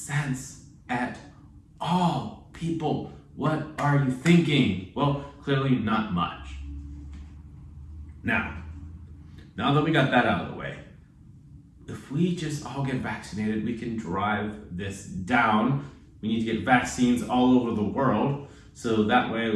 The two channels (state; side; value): identical; both; correlation 1.00